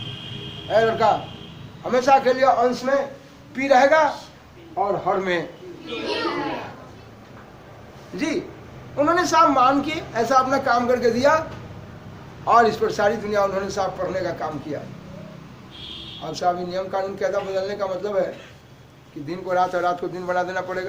है लड़का, हमेशा के लिए अंश में P रहेगा और हर में जी। उन्होंने साहब मान के ऐसा अपना काम करके दिया और इस पर सारी दुनिया उन्होंने साहब पढ़ने का काम किया। अब साहब ये नियम कानून कहता बदलने का मतलब है कि दिन को रात और रात को दिन बना देना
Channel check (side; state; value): both; identical; correlation 1.00